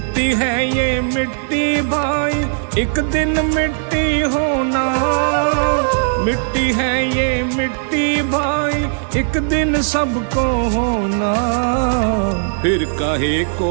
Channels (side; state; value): left; silent; 68 dB below the other